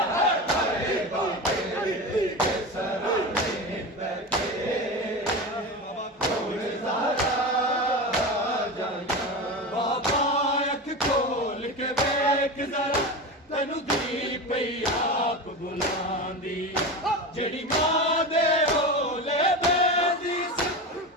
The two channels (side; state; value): both; normal; correlation 0.24